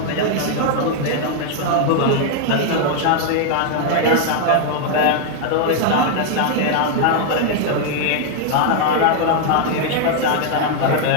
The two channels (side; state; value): both; different; correlation 0.00